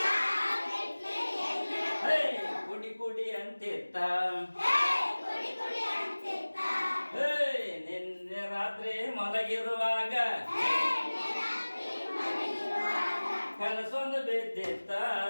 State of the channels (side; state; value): both; inverted; correlation -1.00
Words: ಕುಡಿ ಕುಡಿ ಅಂತಿತ್ತ. ನಿನ್ನೆ ರಾತ್ರಿ ಮಲಗಿರುವಾಗ ಕನಸೊಂದು ಬಿದ್ದಿತ್ತ.